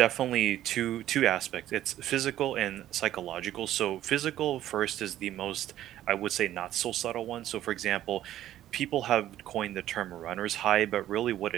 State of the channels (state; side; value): quieter; left; 12.9 dB